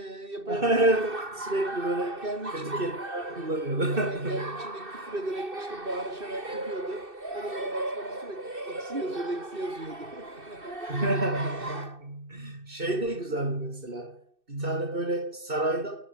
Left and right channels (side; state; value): left; late; 2.6 ms